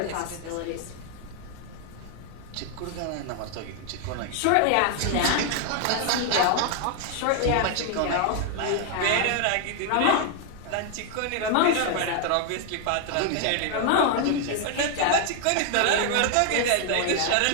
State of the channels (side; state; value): both; different; correlation 0.00